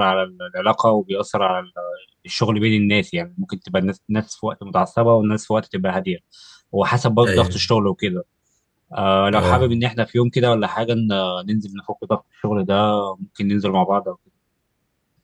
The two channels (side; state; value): both; identical; correlation 1.00